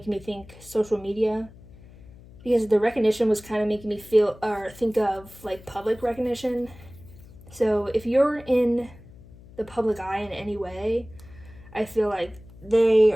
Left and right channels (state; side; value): noise; left; hum, 21 dB below the sound